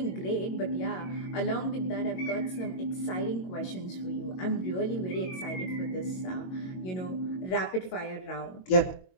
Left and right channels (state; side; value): late; right; 22 ms